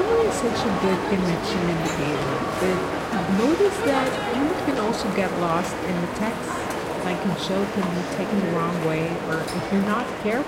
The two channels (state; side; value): identical; both; correlation 1.00